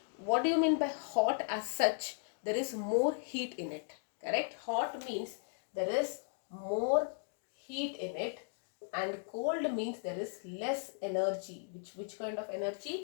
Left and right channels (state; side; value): silent; right; digital silence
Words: what do you mean by hot as such? There is more heat in it. Correct. Hot means there is more heat in it, and cold means there is less energy. Which kind of